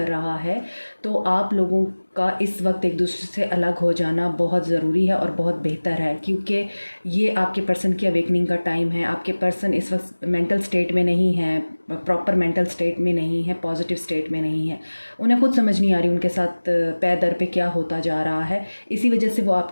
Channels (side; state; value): both; inverted; correlation -1.00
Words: रहा है, तो आप लोगों का इस वक्त एक दूसरे से अलग हो जाना बहुत ज़रूरी है और बहुत बेहतर है, क्योंकि ये आपके पर्सन की अवेकनिंग का टाइम है। आपके पर्सन इस वक्त मेंटल स्टेट में नहीं है, प्रॉपर मेंटल स्टेट में नहीं है, पॉजिटिव स्टेट में नहीं है। उन्हें खुद समझ नहीं आ रही उनके साथ पैर दर पे क्या होता जा रहा है। इसी वजह से वो